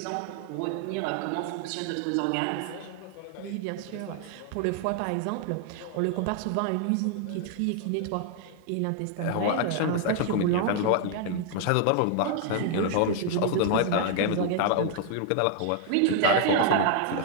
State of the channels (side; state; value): both; different; correlation 0.00